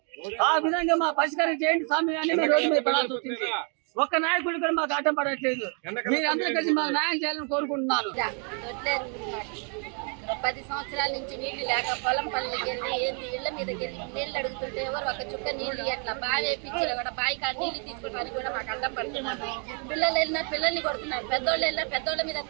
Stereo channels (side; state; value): left; quieter; 39.7 dB